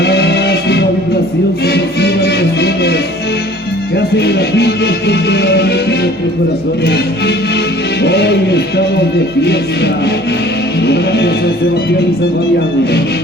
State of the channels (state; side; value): normal; both; correlation 0.50